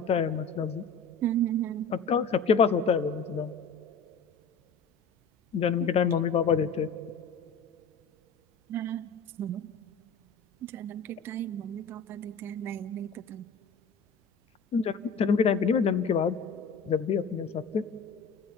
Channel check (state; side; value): quieter; right; 4.2 dB